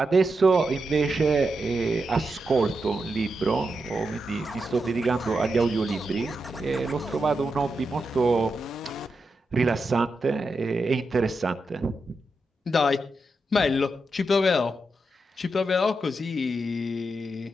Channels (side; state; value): both; normal; correlation 0.86